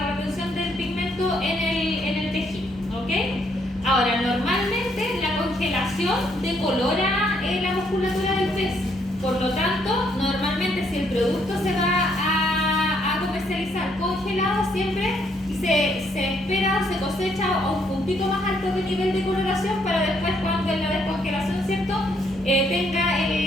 retención del pigmento en el tejido, ¿ok? Ahora, normalmente la congelación decolora la musculatura del pez, por lo tanto, normalmente si el producto se va a comercializar congelado, siempre se espera o se cosecha a un puntito más alto de nivel de coloración para después, cuando en la descongelación, ¿cierto?, tenga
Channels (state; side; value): normal; both; correlation 0.71